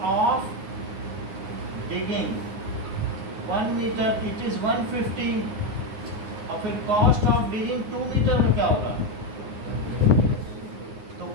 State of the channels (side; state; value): left; late; 9.6 ms